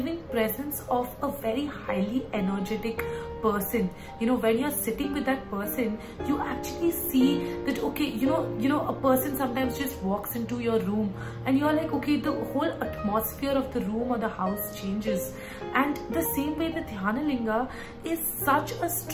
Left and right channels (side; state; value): both; identical; correlation 1.00